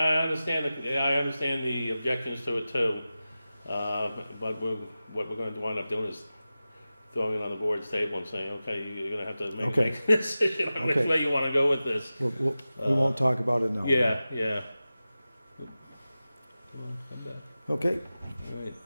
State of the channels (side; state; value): both; inverted; correlation -0.95